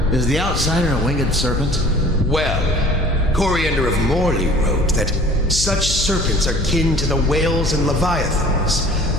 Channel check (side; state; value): left; noise; hum, 4 dB below the sound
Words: is the outsider a winged serpent? Well, Coriander of Morley wrote that such serpents are kin to the whales and leviathans,